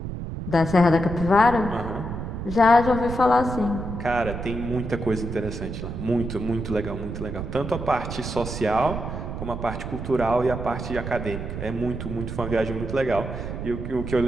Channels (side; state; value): right; noise; rumble, 6 dB below the sound